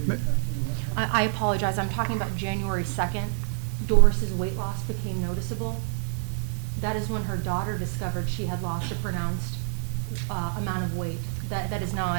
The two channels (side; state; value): left; silent; digital silence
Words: are you talking about? I apologize, I'm talking about January 2nd. Doris's weight loss became noticeable. That is when her daughter discovered she had lost a pronounced amount of weight. That is